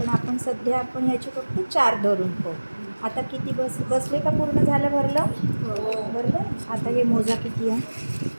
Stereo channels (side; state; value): both; inverted; correlation -1.00